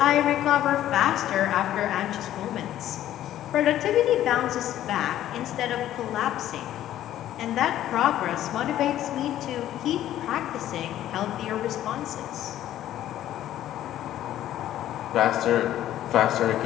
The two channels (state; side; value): quieter; right; 12.5 dB